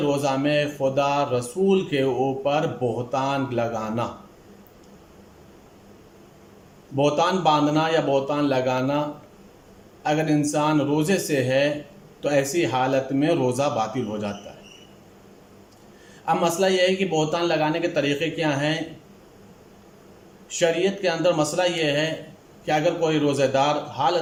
روزہ میں خدا رسول کے اوپر بہتان لگانا، بہتان باندھنا یا بہتان لگانا۔ اگر انسان روزے سے ہے تو ایسی حالت میں روزہ باطل ہو جاتا ہے۔ اب مسئلہ یہ ہے کہ بہتان لگانے کے طریقے کیا ہیں۔ شریعت کے اندر مسئلہ یہ ہے کہ اگر کوئی روزہ دار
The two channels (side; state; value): both; identical; correlation 1.00